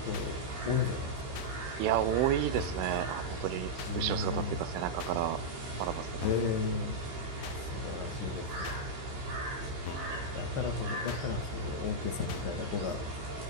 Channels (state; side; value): late; left; 15 ms